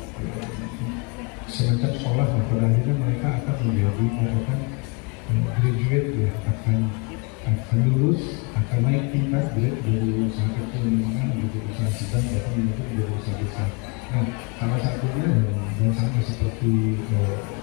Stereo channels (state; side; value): quieter; right; 31.0 dB